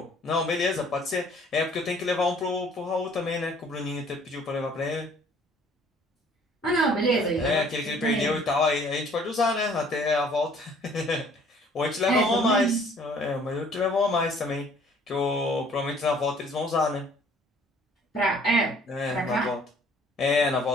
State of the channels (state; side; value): normal; both; correlation 0.57